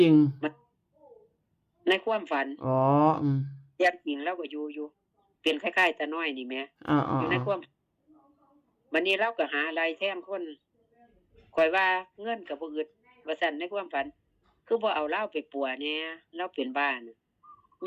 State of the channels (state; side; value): identical; both; correlation 1.00